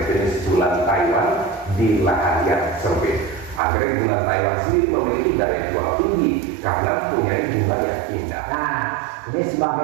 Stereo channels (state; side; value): drops out; left; at 3.6 s